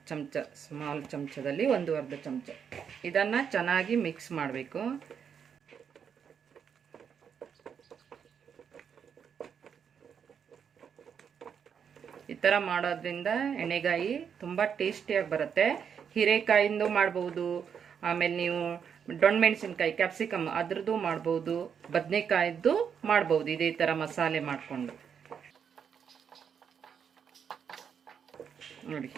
ಚಮಚ, ಸ್ಮಾಲ್ ಚಮಚದಲ್ಲಿ ಒಂದು ಅರ್ಧ ಚಮಚ. ಇದನ್ನು ಚೆನ್ನಾಗಿ ಮಿಕ್ಸ್ ಮಾಡಬೇಕು. ಈ ಥರ ಮಾಡೋದ್ರಿಂದ ಎಣ್ಣೆಗಾಯಿ ತುಂಬ ಟೇಸ್ಟಿಯಾಗಿ ಬರುತ್ತೆ. ಹೀರೆಕಾಯಿಂದ ಮಾಡ್ಬೋದು, ಆಮೇಲೆ ನೀವು ಡೊಣ್ಮೆಣಸಿನ್ಕಾಯಿ ಕ್ಯಾಪ್ಸಿಕಮ್ ಅದ್ರದ್ದು ಮಾಡ್ಬೋದು, ಬದನೆಕಾಯಿದ್ದು ಮಾಡ್ಬೋದು. ಇದೇ ಥರ ಮಸಾಲೆ ಮಾಡಿಕೊಂಡು ನೋಡಿ,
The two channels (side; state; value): left; quieter; 7.4 dB